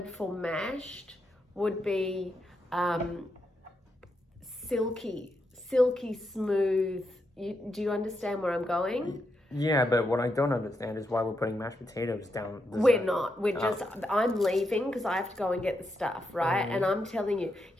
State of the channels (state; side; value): normal; both; correlation 0.83